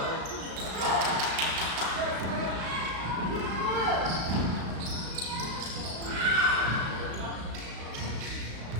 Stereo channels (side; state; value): left; late; 35 ms